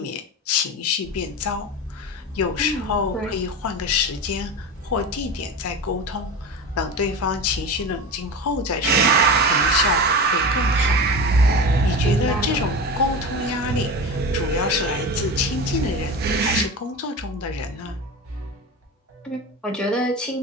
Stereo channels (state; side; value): normal; both; correlation 0.27